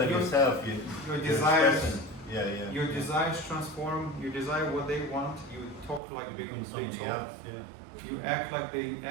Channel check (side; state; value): left; drops out; at 6.0 s